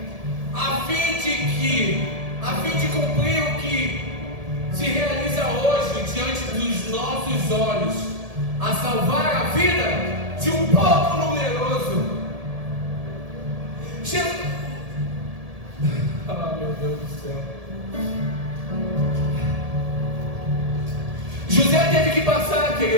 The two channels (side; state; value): left; late; 1.7 ms